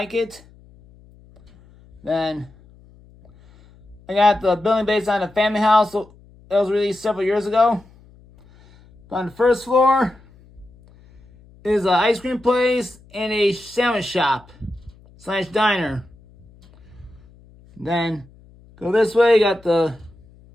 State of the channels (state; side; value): noise; left; hum, 26 dB below the sound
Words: it. Then I got the building based on a family house that was released several years ago. On the first floor is an ice cream place and a sandwich shop / diner. Then go this way, you got the